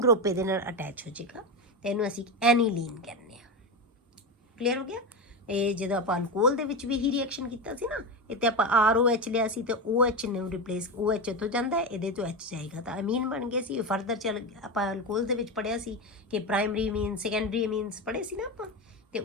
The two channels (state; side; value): normal; both; correlation 0.17